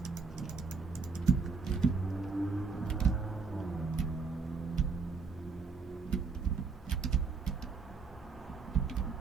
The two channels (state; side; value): quieter; left; 4.7 dB